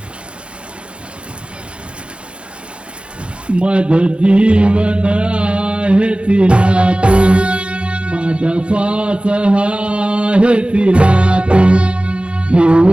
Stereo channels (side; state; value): left; late; 0.058 ms